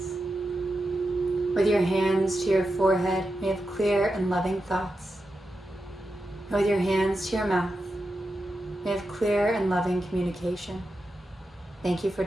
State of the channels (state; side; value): normal; both; correlation 0.89